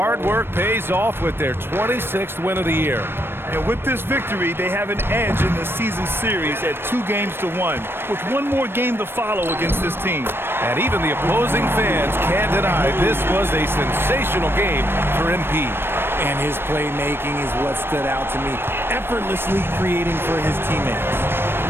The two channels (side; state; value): left; late; 0.11 ms